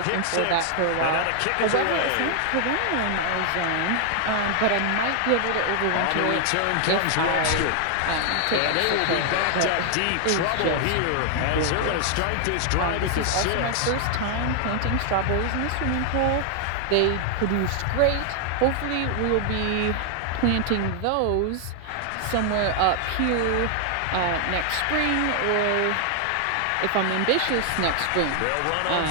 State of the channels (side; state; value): both; different; correlation 0.00